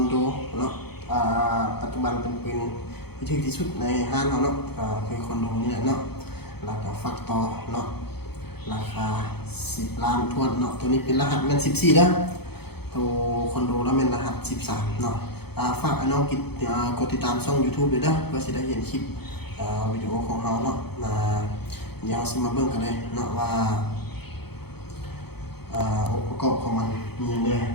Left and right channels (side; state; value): right; late; 0.97 ms